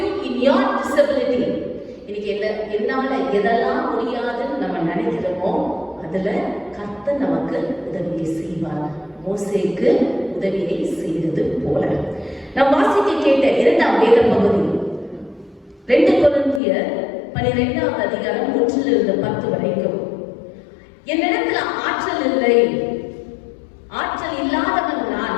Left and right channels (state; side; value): drops out; right; at 16.6 s